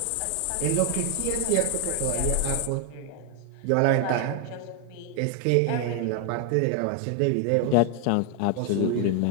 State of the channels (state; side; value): different; both; correlation 0.00